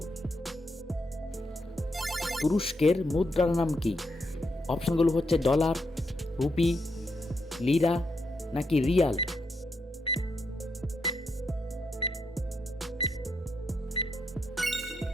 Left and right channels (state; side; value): normal; both; correlation 0.81